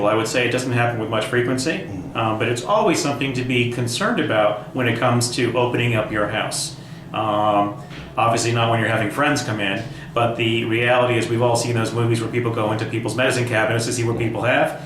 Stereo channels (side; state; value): both; identical; correlation 1.00